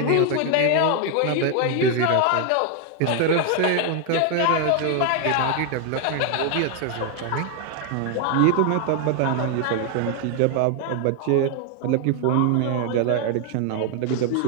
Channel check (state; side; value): different; both; correlation 0.01